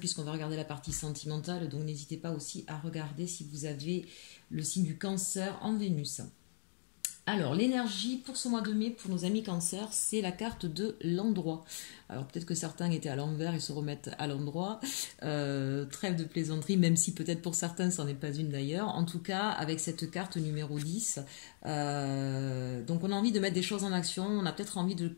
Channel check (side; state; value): right; silent; digital silence